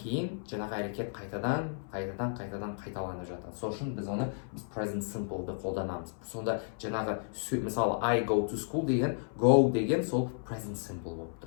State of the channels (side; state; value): right; silent; 56 dB below the other